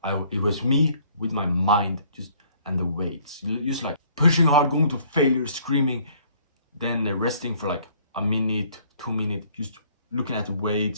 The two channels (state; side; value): inverted; both; correlation -0.60